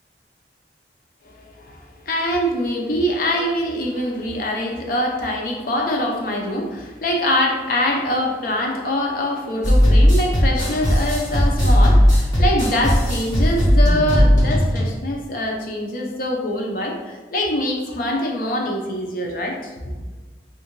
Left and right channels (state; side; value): normal; both; correlation 0.67